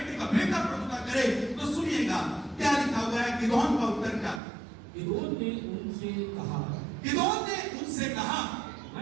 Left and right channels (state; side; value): drops out; left; at 4.4 s